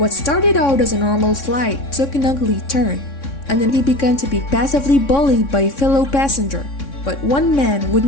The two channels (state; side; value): late; right; 3.6 ms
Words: started out as a normal flight took an ugly turn, and then he began to be passively bullied by a fellow passenger, but one man